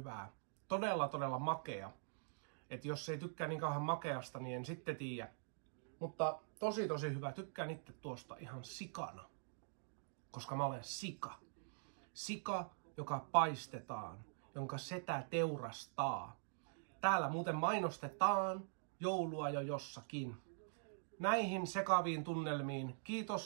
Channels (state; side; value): silent; left; digital silence